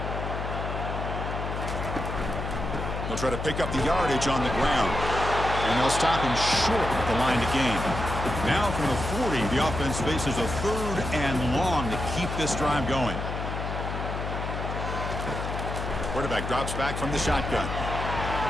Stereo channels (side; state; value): left; noise; hum, 4 dB below the sound